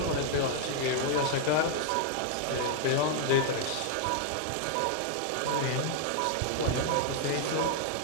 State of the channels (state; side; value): different; both; correlation 0.00